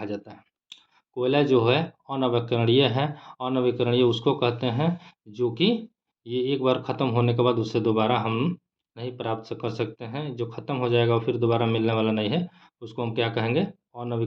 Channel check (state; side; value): identical; both; correlation 1.00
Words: जाता है। कोयला जो है अनवीकरणीय है। अनवीकरणीय उसको कहते हैं जो कि ये एक बार ख़त्म होने के बाद उससे दोबारा हम नहीं प्राप्त कर सकते हैं। जो ख़त्म हो जाएगा और फिर दोबारा मिलने वाला नहीं है, उसको हम क्या कहेंगे?